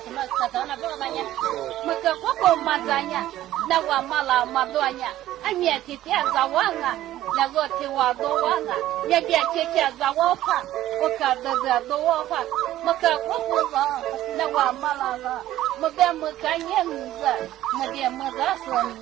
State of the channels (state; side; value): quieter; left; 13.9 dB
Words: 么可到那不那呢？我个婆婆嘛这样，那我妈了嘛多呢，俺面天天在玩啊，那个天我都玩啊，人家天天在我怕，我看到这都我怕，我个婆婆上，那我妈了，我在没干你子，没得没干什么